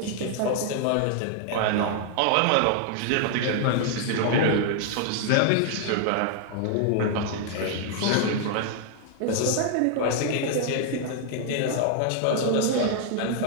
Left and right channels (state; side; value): different; both; correlation 0.00